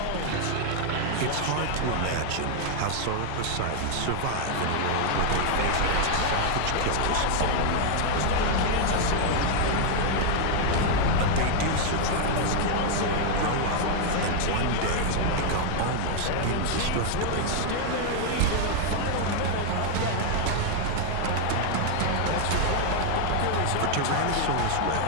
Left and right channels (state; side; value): different; both; correlation 0.00